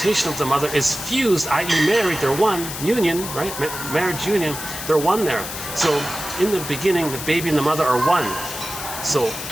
of the mother is fused, i.e. married, they're one, union, right? Marriage union, they're one there. So in the beginning, the baby and the mother are one. So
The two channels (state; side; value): noise; left; hiss, 8 dB below the sound